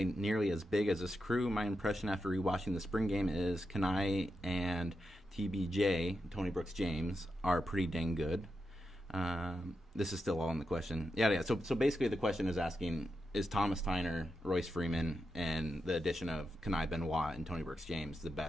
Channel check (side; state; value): both; normal; correlation 0.87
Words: nearly as big as this crew. My impression after rewatching the spring game is Kenai and TBJ, Tony Brooks James, are pretty dang good. This is still all in the question. Yeah. So basically the question is asking, is Thomas Tyner, Royce Freeman, and the addition of Kenai Benoit and Tony Brooks James the